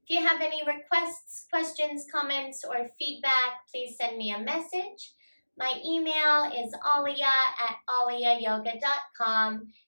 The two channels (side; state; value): both; inverted; correlation -1.00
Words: If you have any requests, questions, comments, or feedback, please send me a message. My email is alia@aliayoga.com,